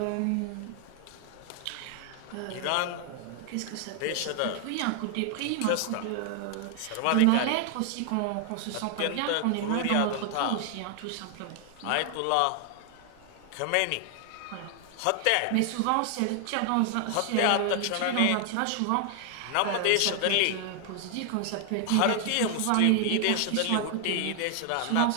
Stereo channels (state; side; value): different; both; correlation 0.00